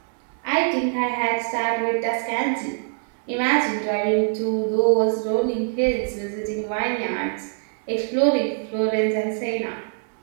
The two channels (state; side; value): silent; left; 63 dB below the other